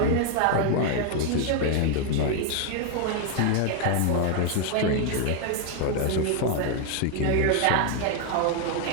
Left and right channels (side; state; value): both; different; correlation 0.00